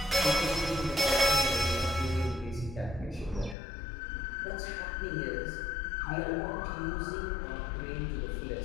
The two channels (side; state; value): right; drops out; at 3.6 s